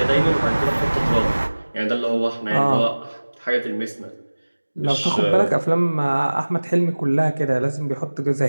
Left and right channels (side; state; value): both; inverted; correlation -1.00